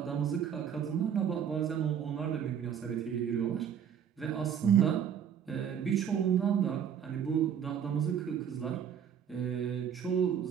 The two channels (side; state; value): left; quieter; 8.5 dB